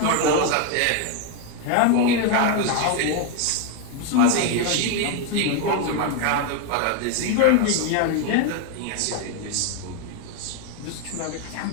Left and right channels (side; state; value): both; different; correlation 0.01